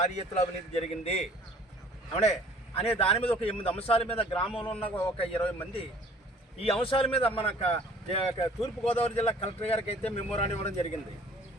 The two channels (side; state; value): both; normal; correlation 0.52